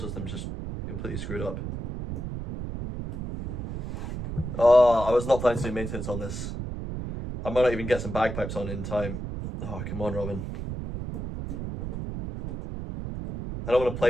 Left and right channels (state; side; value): noise; right; rumble, 6 dB below the sound